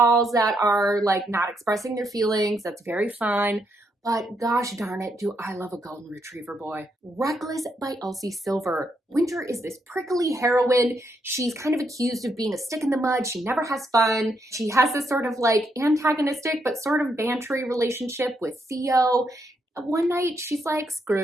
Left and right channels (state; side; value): normal; both; correlation 0.78